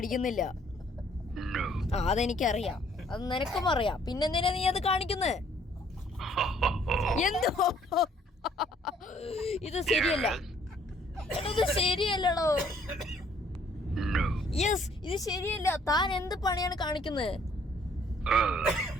അതെനിക്കറിയാം, അത് നിനക്കും അറിയാം. പിന്നെന്തിനാ നീ അത് കാണിക്കുന്നത്? എന്തോ ഇത് ശരിയല്ല. ഇത് ശരിയല്ലടോ. യെസ്, ഇത് ശരിയല്ല. താൻ എന്ത് പണിയാണ് കാണിക്കുന്നത്?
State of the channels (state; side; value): normal; both; correlation 0.62